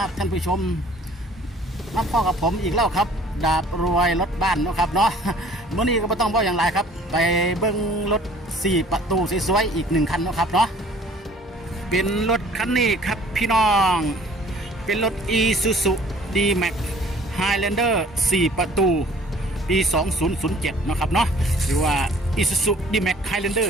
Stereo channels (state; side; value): normal; both; correlation 0.53